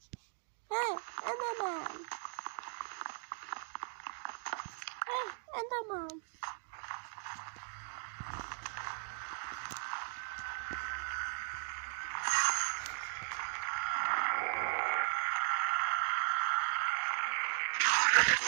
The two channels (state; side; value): silent; left; 53 dB below the other